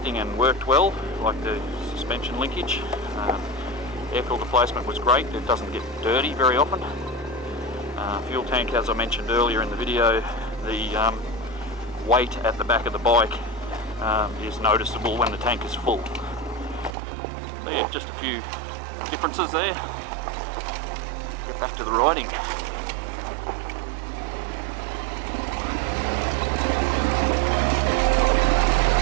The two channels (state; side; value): drops out; left; at 16.9 s